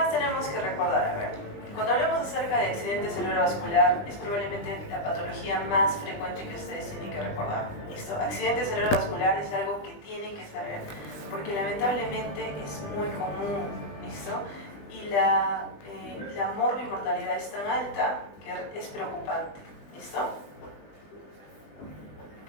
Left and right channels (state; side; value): late; right; 20 ms